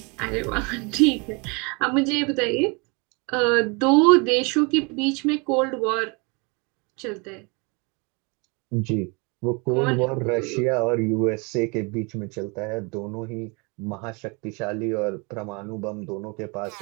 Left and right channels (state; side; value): quieter; left; 30.7 dB